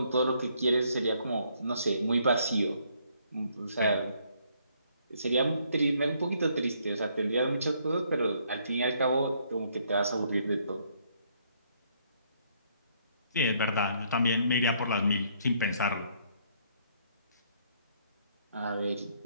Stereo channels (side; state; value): both; inverted; correlation -0.69